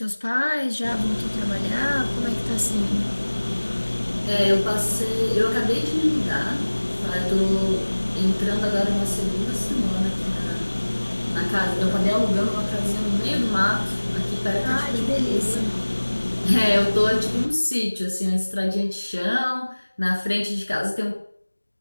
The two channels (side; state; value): both; inverted; correlation -1.00